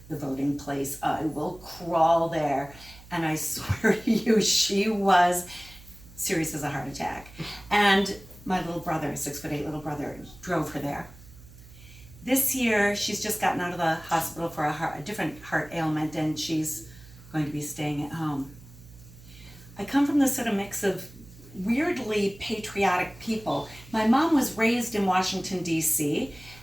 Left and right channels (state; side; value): noise; right; hum, 20 dB below the sound